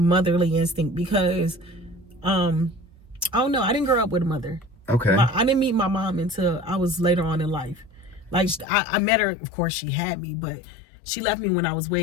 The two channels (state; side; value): drops out; right; at 8.7 s